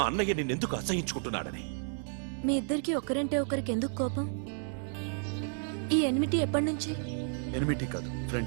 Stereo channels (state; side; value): silent; left; 57 dB below the other